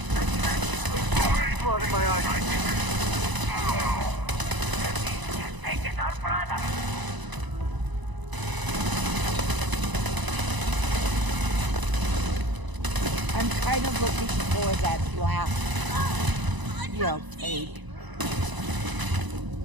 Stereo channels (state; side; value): late; left; 1.0 ms